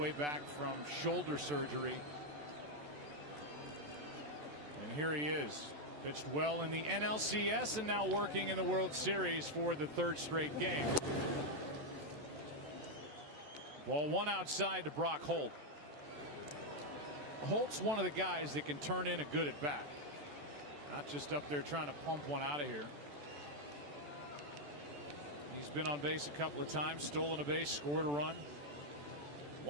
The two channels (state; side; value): late; left; 14 ms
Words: back from shoulder surgery. And here he is. Pitched well in the NLCS and now working in the World Series for the 3rd straight game. Ball 1 outside to Brock Holt. Holt's one of the guys that can turn in a good at bat. Not just up there trying to pump one out of here. He's been on base a couple of times, stolen a base, scored a run.